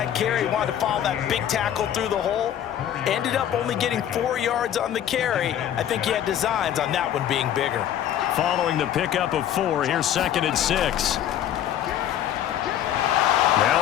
carry. He wanted to follow that big tackle through the hole. Ended up only getting 4 yards on the carry. I think he had designs on that one being bigger. Following the pickup of 4, here's 2nd and 6.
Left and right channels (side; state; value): right; quieter; 10.7 dB